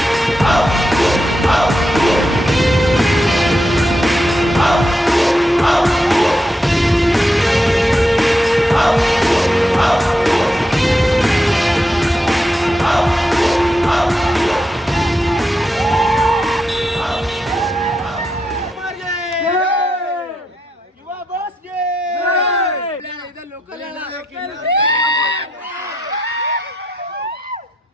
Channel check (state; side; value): normal; both; correlation 0.82